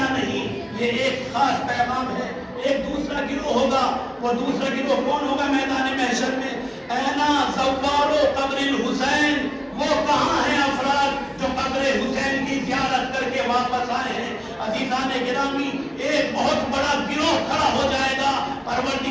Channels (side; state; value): both; identical; correlation 1.00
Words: نہیں، یہ ایک خاص پیغام ہے۔ ایک دوسرا گروہ ہوگا، وہ دوسرا گروہ کون ہوگا میدان محشر میں؟ اینا زوارو قبر الحسین، وہ کہاں ہیں افراد جو قبر حسین کی زیارت کر کے واپس آئے ہیں؟ عزیزان گرامی، ایک بہت بڑا گروہ کھڑا ہو جائے گا،